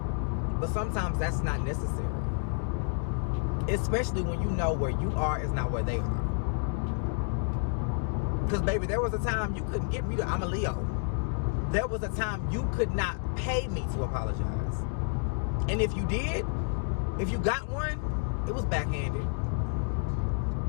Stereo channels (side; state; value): right; silent; 58 dB below the other